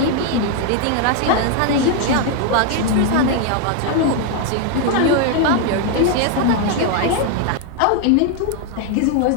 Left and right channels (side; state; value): both; different; correlation 0.01